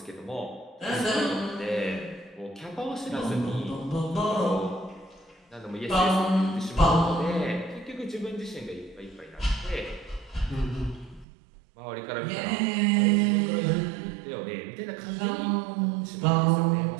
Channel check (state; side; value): drops out; left; at 11.2 s